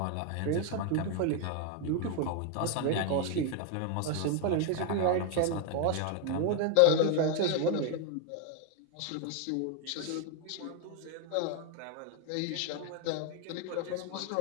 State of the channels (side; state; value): both; different; correlation 0.01